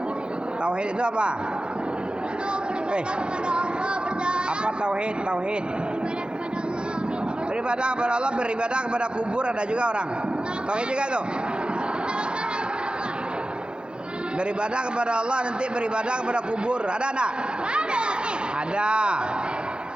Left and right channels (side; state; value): left; late; 0.055 ms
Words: Tauhid itu apa? Itu Apa tauhid? Tauhid. beribadah kepada Allah. Beribadah kepada kubur, ada juga orang. Tauhid juga tuh. Beribadah kepada Allah, nanti beribadah kepada kubur. Ada enggak? Ada.